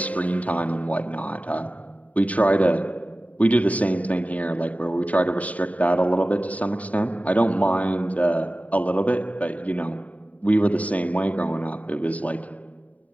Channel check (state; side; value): late; right; 0.069 ms